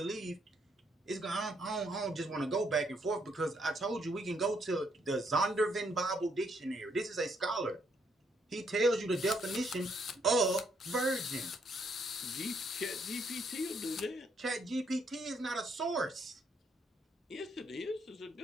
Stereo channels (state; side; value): normal; both; correlation 0.72